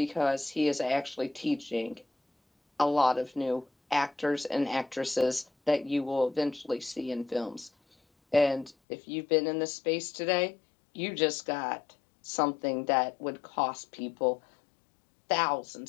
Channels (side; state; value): right; drops out; at 8.8 s